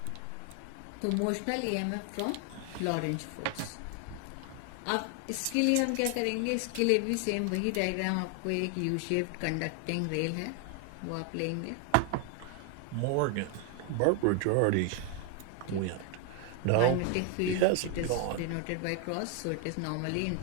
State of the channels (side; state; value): both; different; correlation 0.00